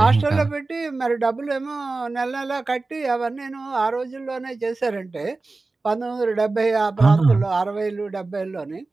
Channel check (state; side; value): quieter; left; 3.5 dB